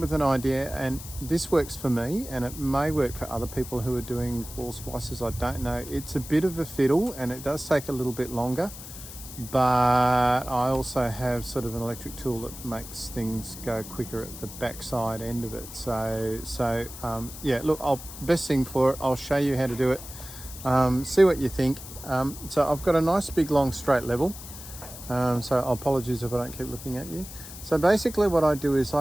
an idea, and this works for me and it may work for other people who are doing wall splicers. I don't know. It's a bit of a fiddle and it does take a little bit longer, but I also have sort of an electric tool that makes things go quicker at the backside end of it. So yeah, look, best thing for it, I'll show you how to do it. See what you think. So I've got a nice big long straight level. So apologies if I don't keep looking at you. So basically what I do is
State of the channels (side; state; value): left; noise; hiss, 13 dB below the sound